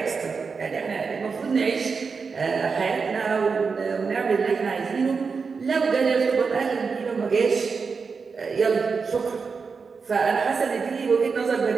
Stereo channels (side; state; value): left; quieter; 5.1 dB